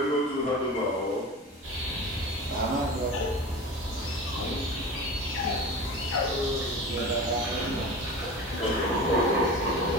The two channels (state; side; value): normal; both; correlation 0.33